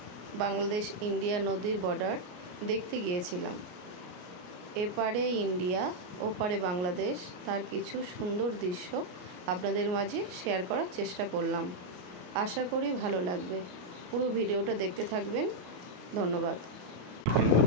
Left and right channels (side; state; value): left; late; 34 ms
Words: বাংলাদেশ ইন্ডিয়া নদীর বর্ডার দেখতে গিয়েছিলাম। এপারে ইন্ডিয়া, ওপারে বাংলাদেশ, তার কিছু সুন্দর দৃশ্য আপনাদের মাঝে শেয়ার করার চেষ্টা করলাম। আশা করি ভালো লাগবে। পুরো ভিডিওটা দেখতে থাকবেন। ধন্যবাদ।